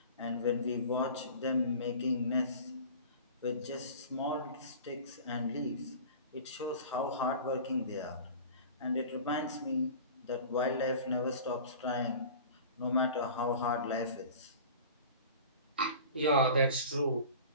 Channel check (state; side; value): inverted; both; correlation -0.39